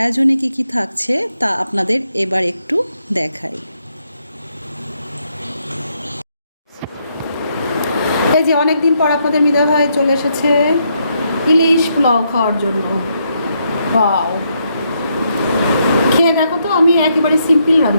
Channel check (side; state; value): both; inverted; correlation -0.77